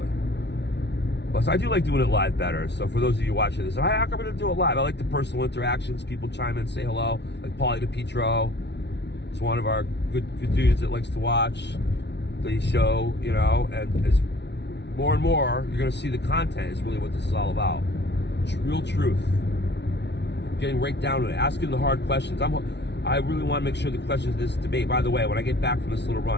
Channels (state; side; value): late; right; 0.50 ms